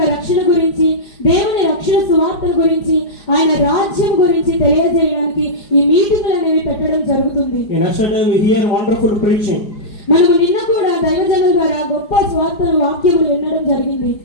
రక్షణ గురించి, దేవుని రక్షణ సువార్త గురించి, ఆయన రాజ్యం గురించి తెలియజేయడానికి ఈ మీటింగులు అనేవి పెట్టడం జరుగుతుంది. In yesterday we hear wonderful preaching. మనము నిన్న కూడా దైవజనుల ద్వారా గొప్ప సువార్తను వాక్యములు వినడం జరిగింది.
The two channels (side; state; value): right; late; 4.8 ms